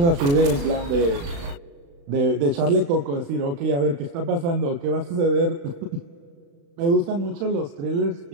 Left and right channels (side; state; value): left; late; 35 ms